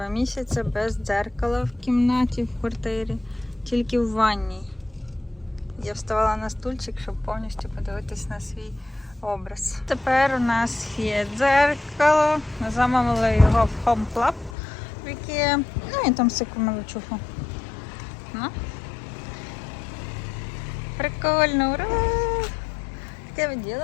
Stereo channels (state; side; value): drops out; right; at 14.6 s